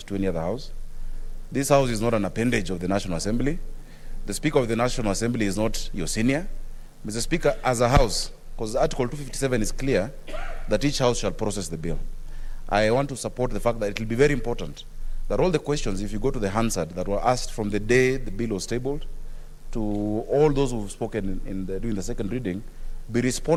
to any other House. This House is not an appendage of the National Assembly. The Speaker of the National Assembly is not your senior. Mr. Speaker, as a House, because Article 257 is clear that each House shall process the bill. I want to support the fact that it will be very important that all the questions, if you go to the Hansard, that were asked from the day the bill was tabled to all those who've spoken during the second reading, be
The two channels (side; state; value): both; identical; correlation 1.00